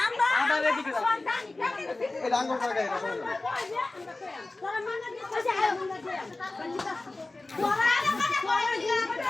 আমরা এদিকে এই ডাঙ্গর টাকা এটা তোরা মানে দিছে আয় মনে দে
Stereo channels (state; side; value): quieter; right; 3.1 dB